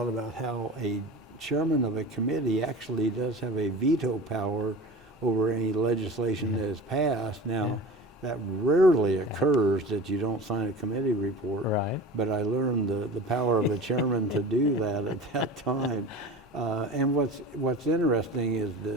about how a chairman of a committee actually does have a veto power over any legislation that is passed. Now, that rarely occurs that you don't sign a committee report. Right. But I learned the power of a chairman to do that at that time. And what's interesting is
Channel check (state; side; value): normal; both; correlation 0.35